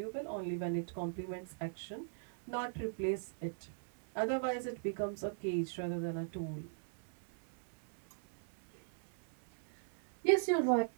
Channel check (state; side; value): silent; left; 51 dB below the other